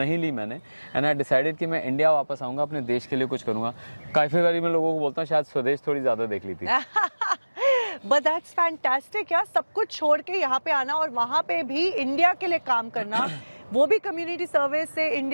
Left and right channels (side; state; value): both; inverted; correlation -1.00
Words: ली मैंने। एंड आई डिसाइडेड कि मैं इंडिया वापस आऊँगा, अपने देश के लिए कुछ करूँगा। काफ़ी बारी मैं लोगों को बोलता हूँ शायद स्वदेश थोड़ी ज़्यादा देख ली थी। बट दैट्स फैंटास्टिक यार, सब कुछ छोड़ के यहाँ पे आना और वहाँ पे भी इंडिया के लिए काम करना, वो भी कम्युनिटी सर्विस से।